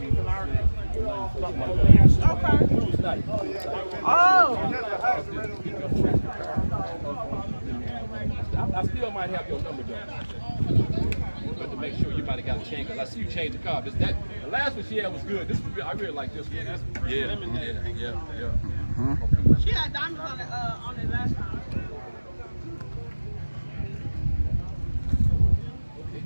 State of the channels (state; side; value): inverted; both; correlation -1.00